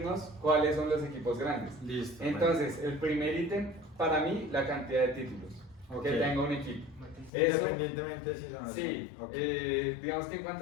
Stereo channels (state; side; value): drops out; right; at 7.3 s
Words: cuáles son los equipos grandes. Listo. Entonces, el primer ítem, para mí, la cantidad de títulos Ok. que tenga un equipo. Bueno, Eso- independientemente si son así. Sí, Ok. digamos que en